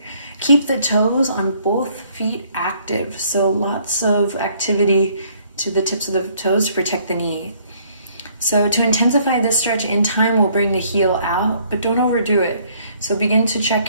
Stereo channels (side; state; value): both; inverted; correlation -0.63